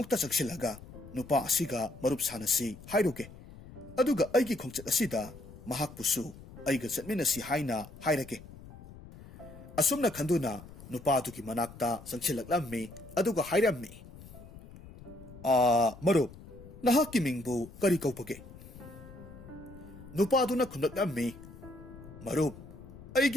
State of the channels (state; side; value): noise; left; rumble, 17 dB below the sound